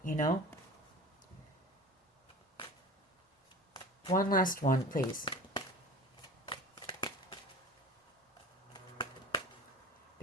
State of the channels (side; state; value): both; normal; correlation 0.37